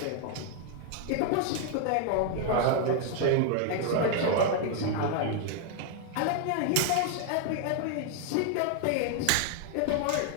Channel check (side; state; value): both; different; correlation 0.00